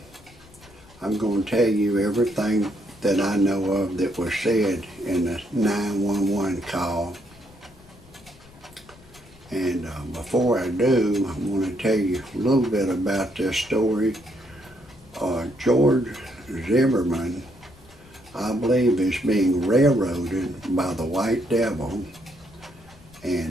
I'm going to tell you everything that I know of that was said in the 911 call. And before I do, I want to tell you a little bit about this story. George Zimmerman, I believe, is being railroaded by the white devil,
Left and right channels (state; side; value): noise; left; rumble, 24 dB below the sound